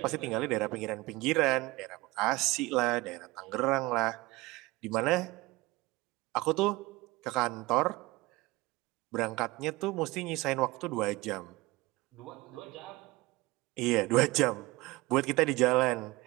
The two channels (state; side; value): quieter; left; 21.5 dB